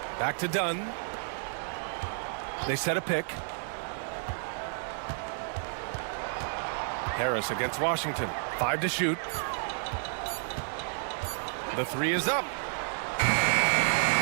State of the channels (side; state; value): left; silent; digital silence